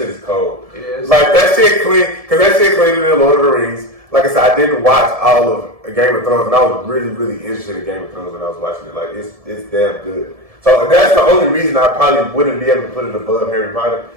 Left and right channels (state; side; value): late; left; 1.7 ms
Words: is cold. It is. Like that shit clean, cause that shit cleaner than Lord of the Rings. Like I said, I didn't watch all of Game of Thrones, and I was really, really interested in Game of Thrones when I was watching it. Like it's damn good. So that's the only reason I probably wouldn't be able to put it above Harry Potter,